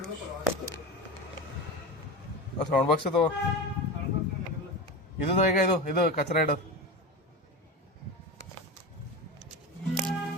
ಸೌಂಡ್ ಬಾಕ್ಸ್ ಅದು ಇದು ಈಗ ಇದು ಕಚರಾ ಇಡೋದು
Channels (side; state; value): both; normal; correlation 0.23